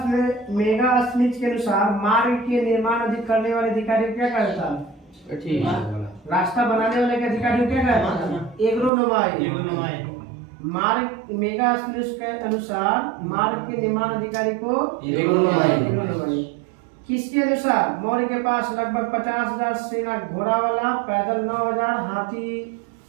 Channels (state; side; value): drops out; left; at 8.9 s